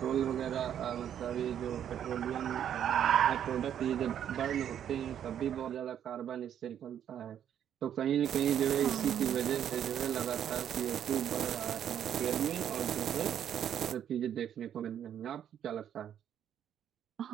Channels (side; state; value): left; quieter; 9.7 dB